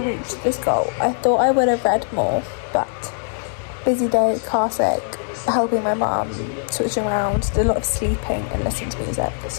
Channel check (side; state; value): right; silent; 65 dB below the other